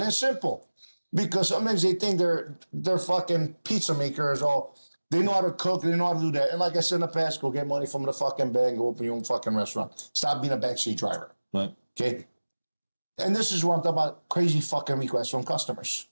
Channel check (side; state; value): both; inverted; correlation -1.00